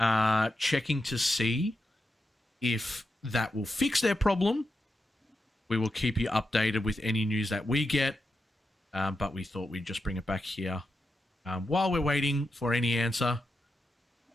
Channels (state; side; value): normal; both; correlation 0.87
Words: checking to see if that will fix their problem. We will keep you updated with any news that we get. But we thought we'd just bring it back here while we're waiting for any answer.